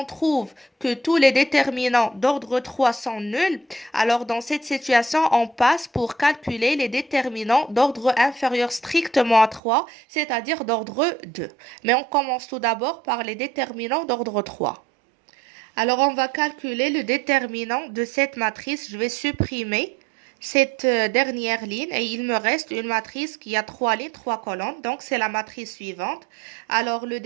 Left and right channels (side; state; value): left; drops out; at 9.6 s